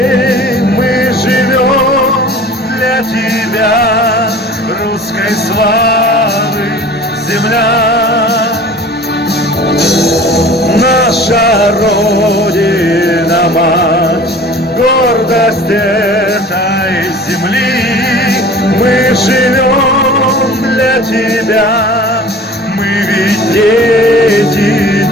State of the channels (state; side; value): normal; both; correlation 0.43